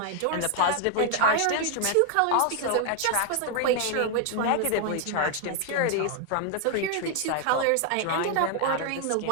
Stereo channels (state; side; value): different; both; correlation 0.00